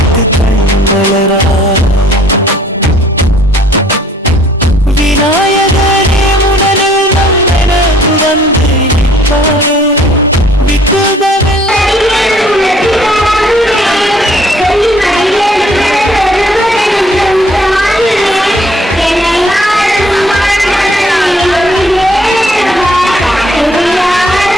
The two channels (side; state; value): both; normal; correlation 0.60